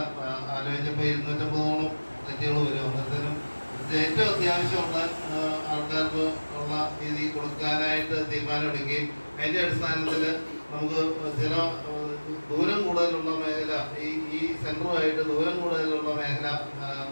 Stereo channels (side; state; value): both; inverted; correlation -1.00